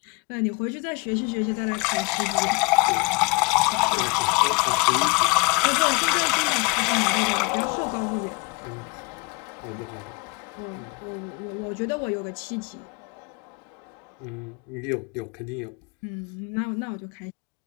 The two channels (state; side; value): quieter; right; 29.5 dB